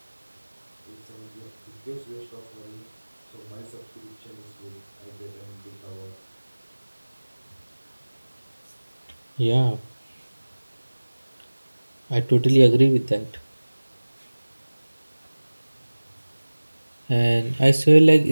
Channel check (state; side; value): inverted; both; correlation -1.00